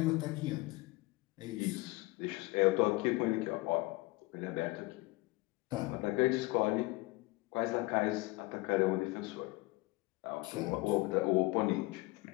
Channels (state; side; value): quieter; right; 21.9 dB